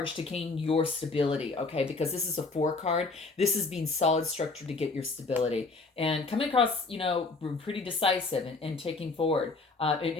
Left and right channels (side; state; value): right; quieter; 3.8 dB